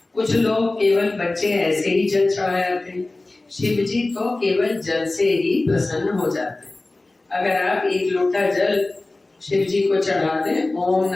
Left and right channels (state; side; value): quieter; right; 3.0 dB